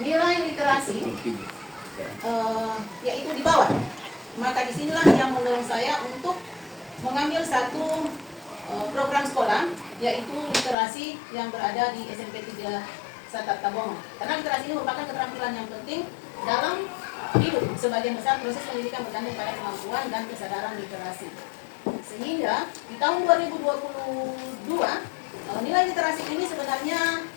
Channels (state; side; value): drops out; right; at 10.8 s